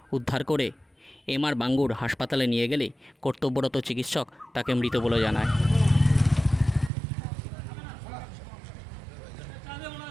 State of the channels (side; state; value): left; drops out; at 6.9 s